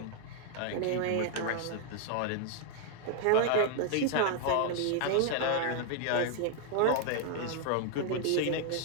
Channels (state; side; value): different; both; correlation 0.00